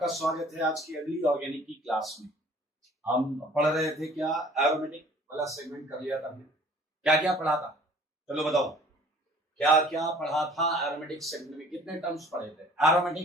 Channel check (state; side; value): normal; both; correlation 0.52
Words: स्वागत है आज की अगली ऑर्गेनिक की क्लास में। हम पढ़ रहे थे क्या, एरोमेटिक वाला सेगमेंट कर लिया था हमने। क्या क्या पढ़ा था, चलो बताओ क्या क्या पढ़ा था एरोमेटिक सेगमेंट में। कितने टर्म्स पढ़े थे?